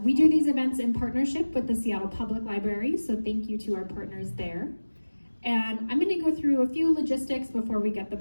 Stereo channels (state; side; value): inverted; both; correlation -1.00